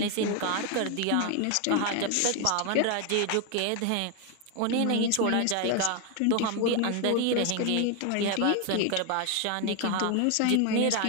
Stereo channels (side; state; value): both; different; correlation 0.01